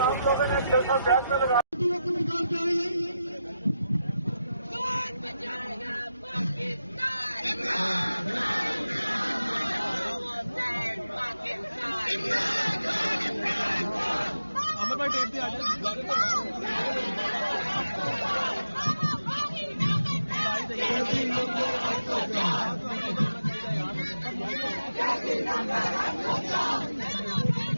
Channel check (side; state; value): both; inverted; correlation -0.88